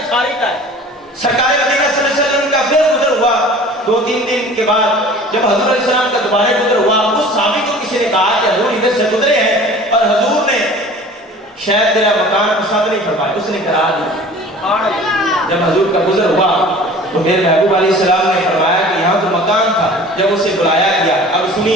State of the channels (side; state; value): both; normal; correlation 0.44